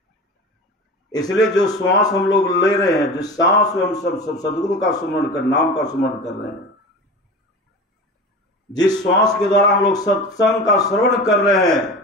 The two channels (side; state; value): both; normal; correlation 0.32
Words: इसलिए जो श्वास हम लोग ले रहे हैं, जिस सांस में हम सब सदगुरु का सुमरण कर, नाम का सुमरण कर रहे हैं, जिस श्वास के द्वारा हम लोग सत्संग का श्रवण कर रहे हैं,